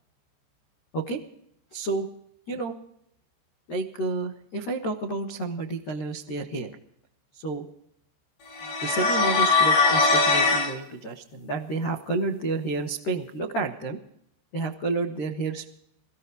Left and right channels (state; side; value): late; right; 13 ms